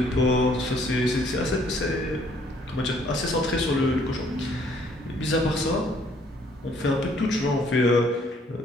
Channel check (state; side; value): normal; both; correlation 0.63